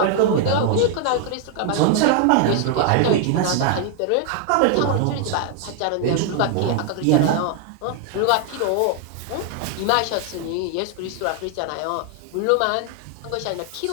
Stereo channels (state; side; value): different; both; correlation 0.00